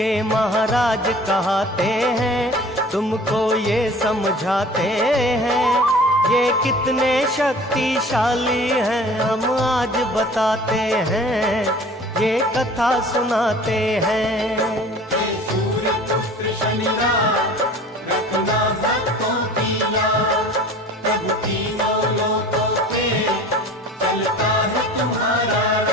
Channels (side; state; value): both; normal; correlation 0.45